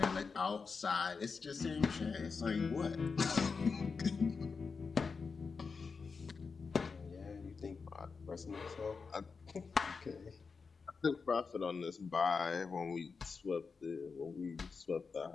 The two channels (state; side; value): quieter; right; 5.0 dB